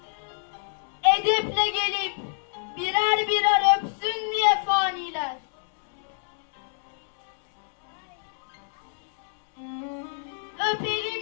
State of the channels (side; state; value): right; silent; 60 dB below the other